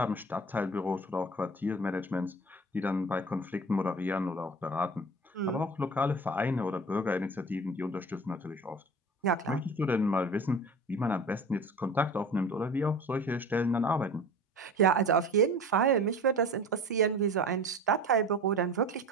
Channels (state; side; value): normal; both; correlation 0.36